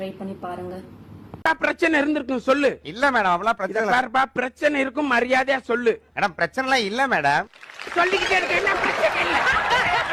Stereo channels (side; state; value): both; identical; correlation 1.00